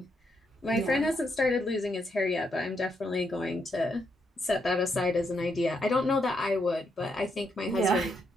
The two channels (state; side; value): normal; both; correlation 0.78